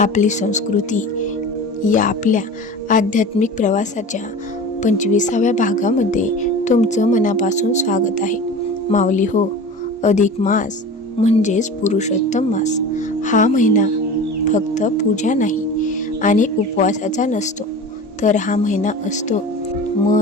संस्कृती या आपल्या आध्यात्मिक प्रवासाच्या 25व्या भागामध्ये तुमचं मनापासून स्वागत आहे. माऊली हो, अधिक मास म्हणजेच पुरुषोत्तम मास हा महिना फक्त पूजा नाही आणि उपवासाचा नसतो, तर हा महिना असतो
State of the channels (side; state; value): both; normal; correlation 0.35